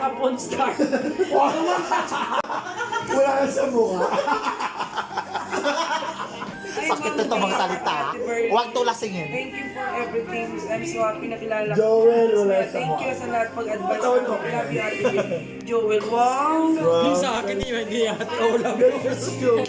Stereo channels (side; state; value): both; identical; correlation 1.00